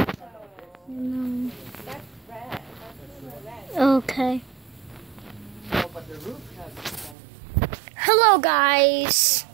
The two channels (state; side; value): drops out; left; at 7.2 s